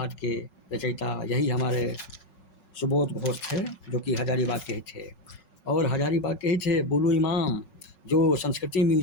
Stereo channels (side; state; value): right; late; 5.4 ms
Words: के रचयिता यही हमारे सुबोध घोष थे, जो कि हजारीबाग के ही थे। और हजारीबाग के ही थे बुलू इमाम, जो संस्कृति